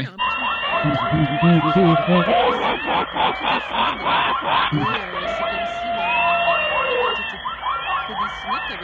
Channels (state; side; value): identical; both; correlation 1.00